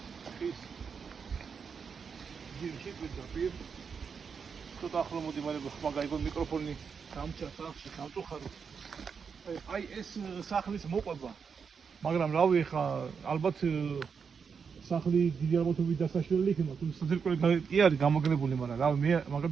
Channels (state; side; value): quieter; left; 6.1 dB